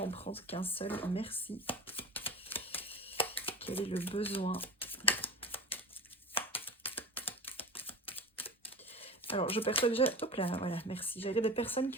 prendre qu'un seul. Merci. Quel est le besoin? Alors, je perçois déjà... Hop là, voilà, merci. J'avais des personnes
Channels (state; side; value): normal; both; correlation 0.32